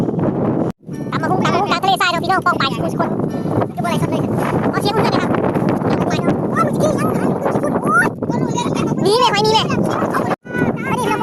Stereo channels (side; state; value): both; identical; correlation 1.00